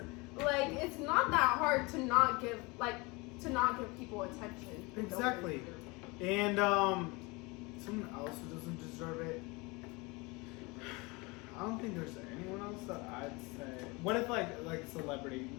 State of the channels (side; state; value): right; quieter; 25.9 dB